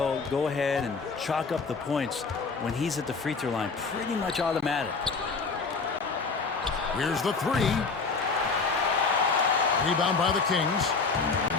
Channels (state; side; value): quieter; right; 4.6 dB